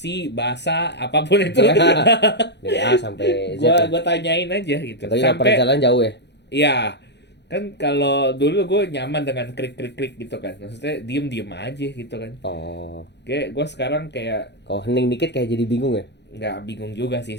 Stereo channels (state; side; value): late; right; 0.50 ms